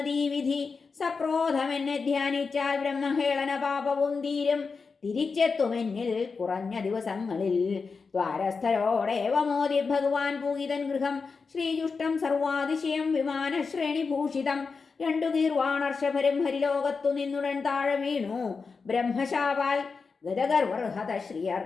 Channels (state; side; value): quieter; right; 4.8 dB